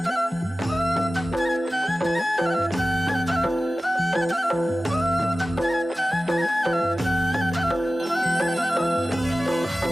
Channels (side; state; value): both; normal; correlation 0.96